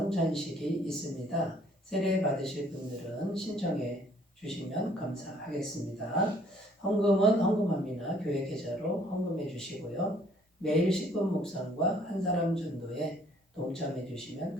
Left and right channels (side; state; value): both; normal; correlation 0.60